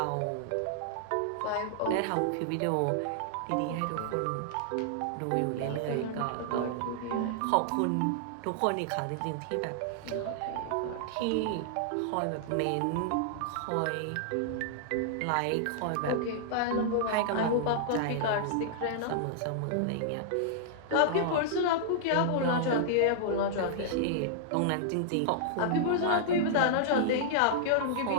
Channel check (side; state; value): both; different; correlation -0.01